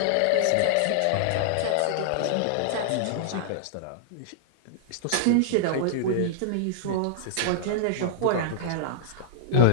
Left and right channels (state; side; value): different; both; correlation -0.01